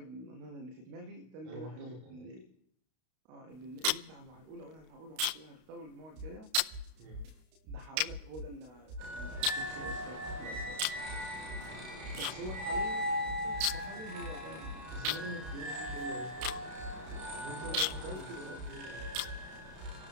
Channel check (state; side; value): late; left; 32 ms